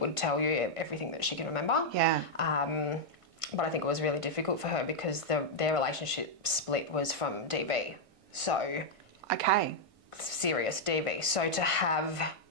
tell you everything that she can remember. Yeah. But I think it was really difficult for her because their relationship split was from DV. So serious DV. So to have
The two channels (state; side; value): late; left; 1.6 ms